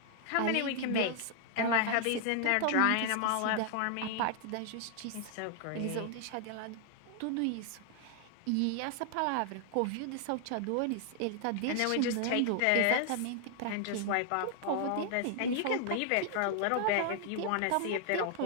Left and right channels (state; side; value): different; both; correlation 0.00